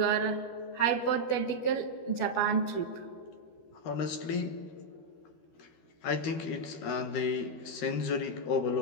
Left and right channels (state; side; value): late; right; 12 ms